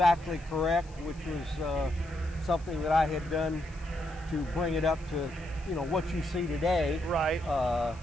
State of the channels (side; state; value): left; noise; hiss, 26 dB below the sound